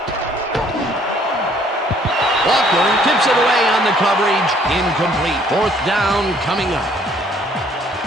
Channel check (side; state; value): both; normal; correlation 0.61